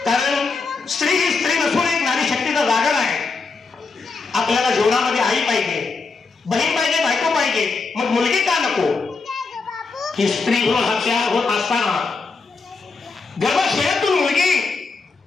कारण स्त्री ही स्त्री नसून एक नारी शक्तीचा जागर आहे आपल्याला जीवनामध्ये आई पाहिजे बहीण पाहिजे बायको पाहिजे मग मुलगी का नको ही स्त्री भ्रूण हत्या होत असताना गर्भाशयातून मुलगी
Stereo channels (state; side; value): quieter; right; 4.3 dB